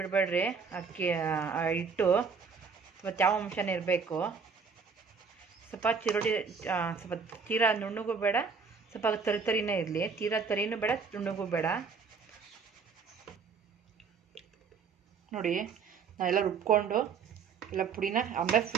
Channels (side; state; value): left; quieter; 5.5 dB